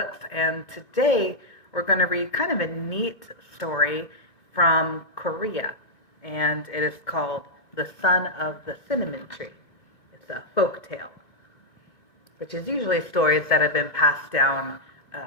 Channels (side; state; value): right; late; 1.5 ms